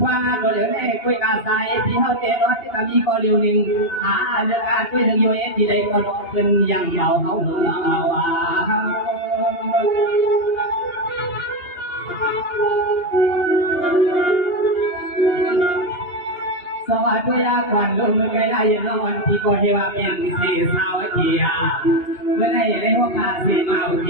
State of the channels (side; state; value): right; late; 2.8 ms